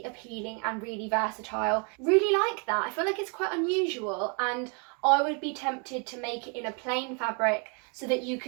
appealing and really versatile. Really like that. I feel like it's quite unusual, and I would be tempted to make it in a plain fabric so that you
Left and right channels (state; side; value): quieter; left; 35.5 dB